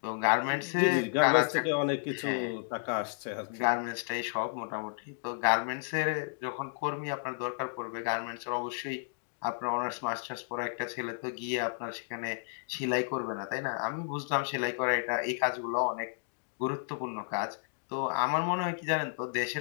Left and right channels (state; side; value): silent; right; digital silence